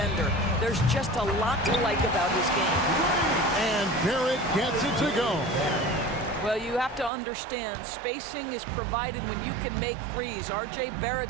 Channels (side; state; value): left; drops out; at 7.1 s